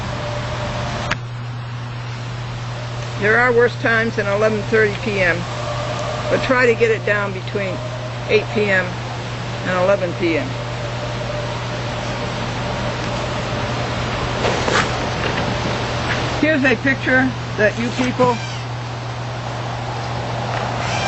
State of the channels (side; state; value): both; identical; correlation 1.00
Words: There are worse times than 11:30 p.m., but try to get it down between 8 p.m. and 11 p.m. Here's a picture that you people